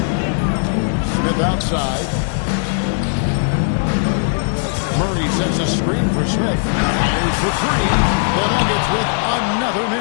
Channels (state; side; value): silent; right; 66 dB below the other